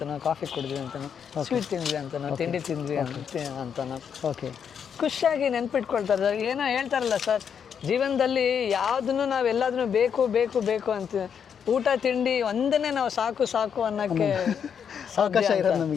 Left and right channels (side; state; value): right; quieter; 7.5 dB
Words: ಕಾಫಿ ಕುಡಿದ್ವಿ ಅಂತನೋ, ಸ್ವೀಟ್ ತಿಂದ್ವಿ ಅಂತನೋ, ತಿಂಡಿ ತಿಂದ್ವಿ ಅಂತನೋ, ಓಕೆ ಖುಷಿಯಾಗಿ ನೆನ್ಪಿಟ್ಕೊಳ್ತಾರೆ ಸರ್. ಏನೋ ಹೇಳ್ತಾರಲ್ಲ ಸರ್, ಜೀವನದಲ್ಲಿ ಯಾವುದನ್ನು ನಾವು ಎಲ್ಲದನ್ನು ಬೇಕು ಬೇಕು ಬೇಕು ಅಂತ, ಊಟ ತಿಂಡಿ ಒಂದನ್ನೇ ನಾವು ಸಾಕು ಸಾಕು ಅನ್ನೋಕ್ಕೆ ಅವಕಾಶ ಇರೋದು